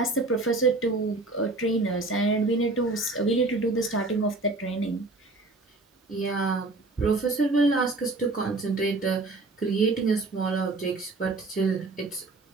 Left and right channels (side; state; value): left; quieter; 3.2 dB